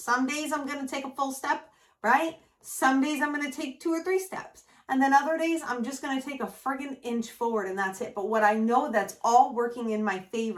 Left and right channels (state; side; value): identical; both; correlation 1.00